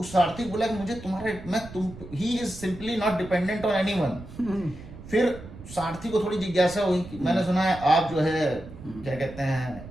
सारथी बोला कि मुझे he is simply not dependent on anyone. फिर सारथी को थोड़ी जिज्ञासा हुई कि मैंने सुना है आप जो है क्या कहते हैं,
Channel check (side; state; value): right; noise; rumble, 15 dB below the sound